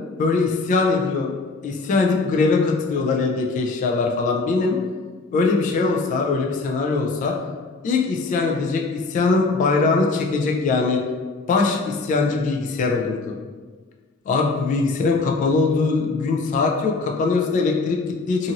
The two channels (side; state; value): right; quieter; 3.7 dB